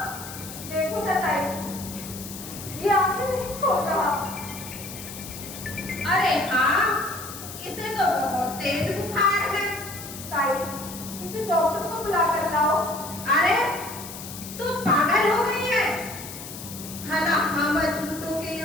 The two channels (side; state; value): left; noise; hiss, 11 dB below the sound